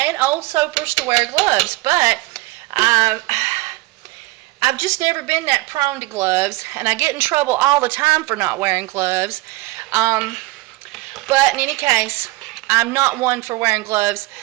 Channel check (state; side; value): quieter; left; 20.4 dB